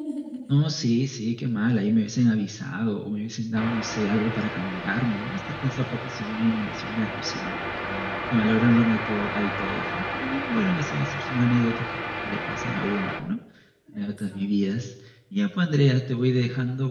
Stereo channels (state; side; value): identical; both; correlation 1.00